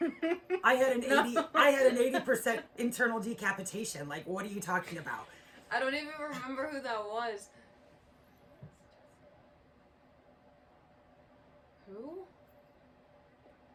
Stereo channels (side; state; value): both; identical; correlation 1.00